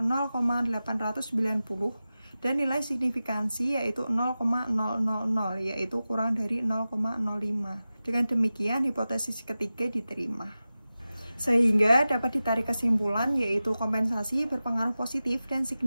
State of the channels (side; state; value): both; inverted; correlation -0.95